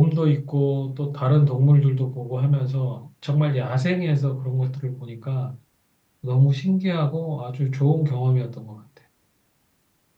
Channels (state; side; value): identical; both; correlation 1.00